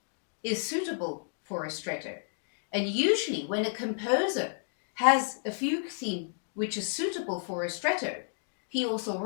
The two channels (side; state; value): right; silent; digital silence